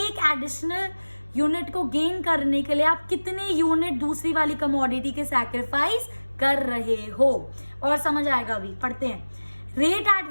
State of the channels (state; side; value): inverted; both; correlation -1.00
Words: एडिशनल यूनिट को गेन करने के लिए आप कितने यूनिट दूसरी वाली कमोडिटी के सैक्रिफाइस कर रहे हो। और समझ आएगा, अभी पढ़ते हैं। Rate at